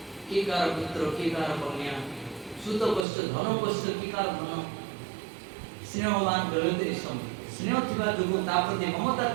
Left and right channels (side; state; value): left; drops out; at 3.1 s